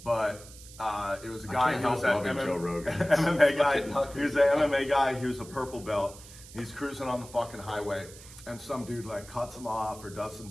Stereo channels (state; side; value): noise; right; hiss, 18 dB below the sound